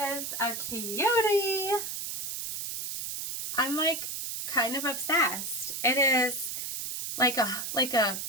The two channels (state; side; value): noise; right; hiss, 5 dB below the sound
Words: a cutie. I'm like kind of obsessed. It is like a